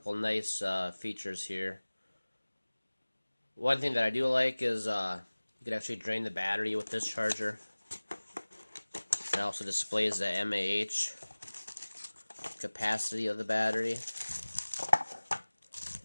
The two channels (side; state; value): both; inverted; correlation -1.00